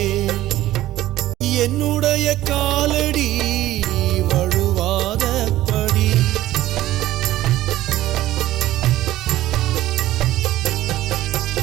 என்னுடைய காலடி வழுவாதபடி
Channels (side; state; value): left; quieter; 15.0 dB